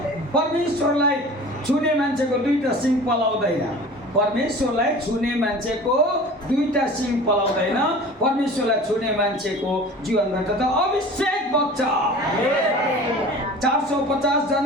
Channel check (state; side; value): normal; both; correlation 0.40